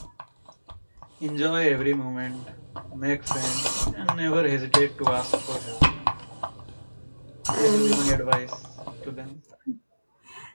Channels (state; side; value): inverted; both; correlation -1.00